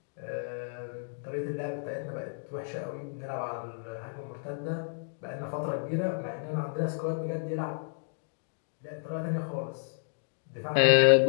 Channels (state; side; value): silent; right; digital silence